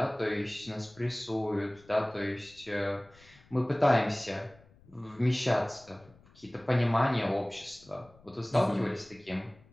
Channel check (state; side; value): noise; left; rumble, 26 dB below the sound